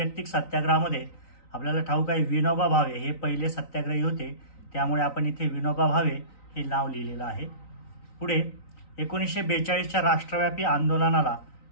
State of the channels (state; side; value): late; right; 3.9 ms